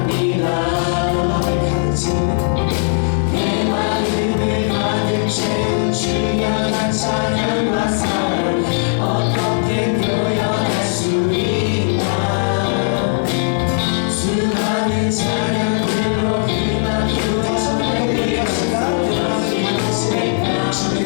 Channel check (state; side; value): silent; right; 68 dB below the other